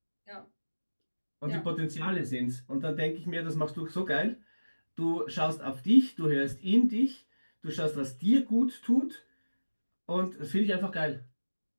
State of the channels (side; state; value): both; inverted; correlation -1.00